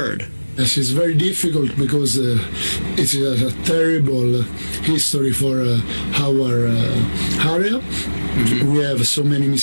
Yes, it's very difficult because it's a terrible history for our area. We have so many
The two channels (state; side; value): inverted; both; correlation -1.00